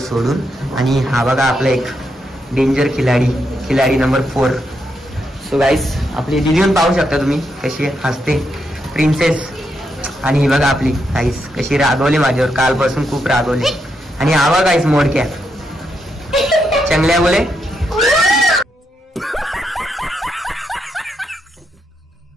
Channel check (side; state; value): both; normal; correlation 0.81